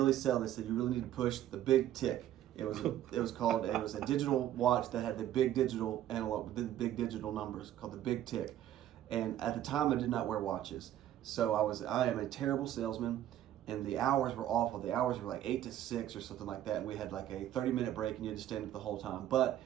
selling, they said you really need to push the big tick. It was a digital watch that had the big digital analog, the big digital numbers, called the big tick. And at the time, I did not wear watches. So I am a terrible salesman, and the hours were awful. The hours were like 8 to 6 or something like that, and we had like a 30-minute break, and you had to stand up the whole time. But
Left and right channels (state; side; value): quieter; left; 12.2 dB